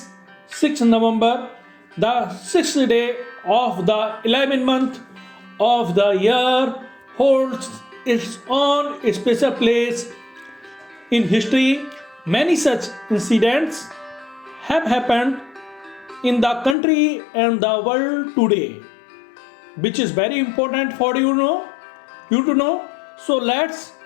6th November, the 6th day of the 11th month of the year holds its own special place in history. Many such incidents have happened in the country and the world today, which is very important for you to know. So let's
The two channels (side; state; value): right; drops out; at 16.8 s